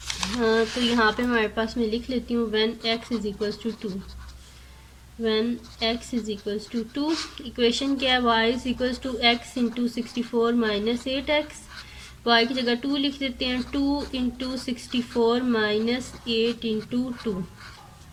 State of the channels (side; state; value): both; identical; correlation 1.00